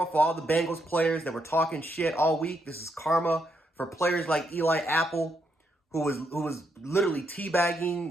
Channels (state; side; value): normal; both; correlation 0.78